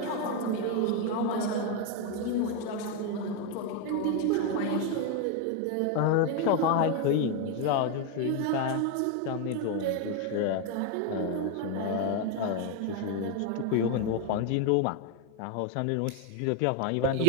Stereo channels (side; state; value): both; different; correlation 0.01